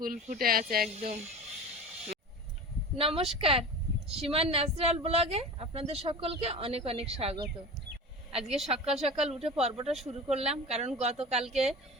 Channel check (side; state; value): both; normal; correlation 0.33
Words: ফুটে আছে একদম। নমস্কার, সীমার ন্যাচারাল ব্লগে আপনাদের সকলকে অনেক অনেক স্বাগত। আজকে সকাল সকাল উঠে পর্বটা শুরু করলাম, কারণ গতকালকে